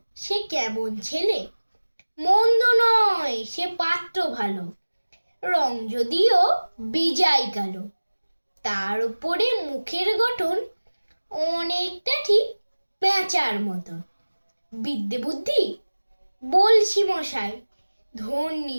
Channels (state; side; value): inverted; both; correlation -1.00